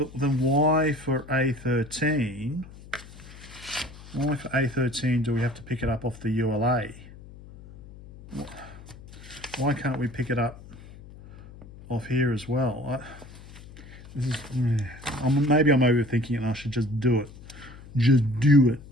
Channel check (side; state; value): left; noise; hum, 18 dB below the sound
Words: then why for A13? Why for A13 do we have to pick it up off the ULA? Why can't we pick it up off here as well? This is, maybe I'm overthinking it and I should just do it. Just do it.